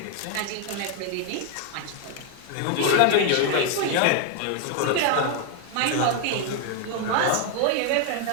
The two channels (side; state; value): both; different; correlation 0.00